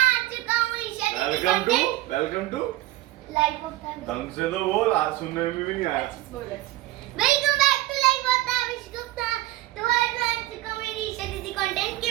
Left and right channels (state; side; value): quieter; left; 17.2 dB